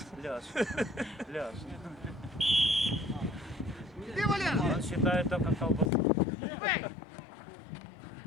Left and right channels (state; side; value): drops out; right; at 5.9 s